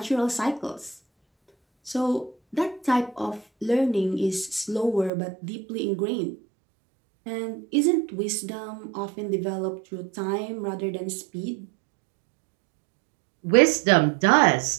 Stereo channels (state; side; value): drops out; left; at 5.1 s